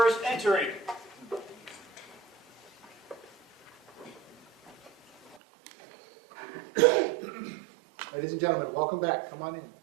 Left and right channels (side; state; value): left; drops out; at 5.4 s